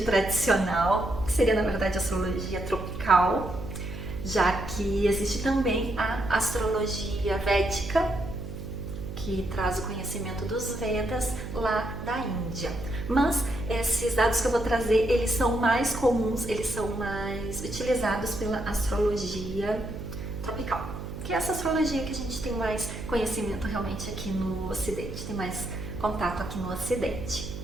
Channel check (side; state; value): right; noise; hum, 9 dB below the sound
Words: tradicional, que seria na verdade a astrologia tropical, já que existe também a astrologia védica, que traz o conhecimento dos Vedas lá da Índia. Mas esses dados que eu vou trazer, eles são mais comuns, eles são mais utilizados pela astrologia tropical, que é essa astrologia que a gente tem mais conhecimento realmente aqui no Ocidente, tem mais contato aqui no Ocidente.